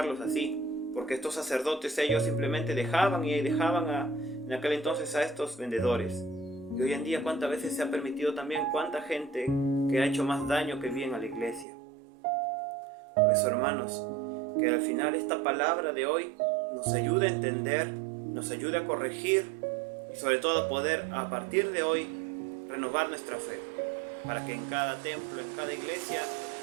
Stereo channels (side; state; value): left; drops out; at 11.7 s